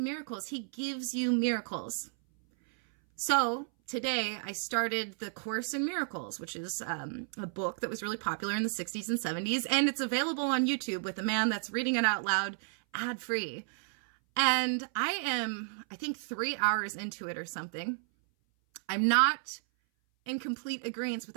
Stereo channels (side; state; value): left; silent; 56 dB below the other